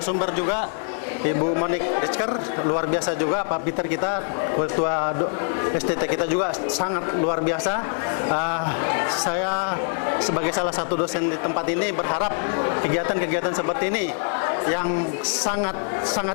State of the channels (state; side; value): silent; right; 63 dB below the other